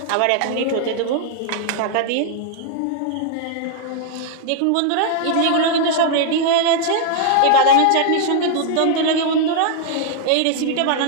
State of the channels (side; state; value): both; different; correlation -0.01